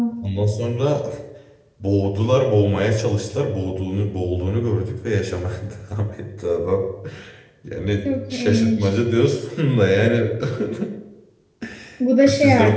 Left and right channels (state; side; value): identical; both; correlation 1.00